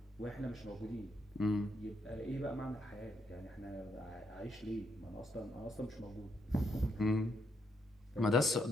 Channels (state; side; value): normal; both; correlation 0.77